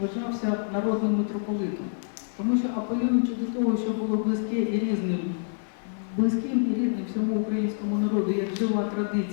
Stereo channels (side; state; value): right; silent; digital silence